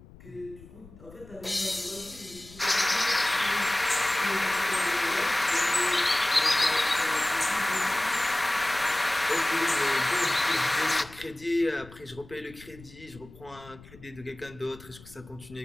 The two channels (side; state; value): left; noise; rumble, 21 dB below the sound